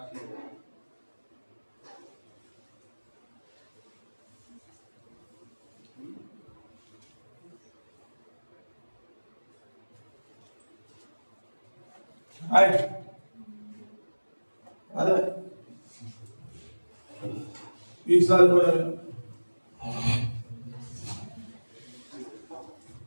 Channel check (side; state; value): both; inverted; correlation -1.00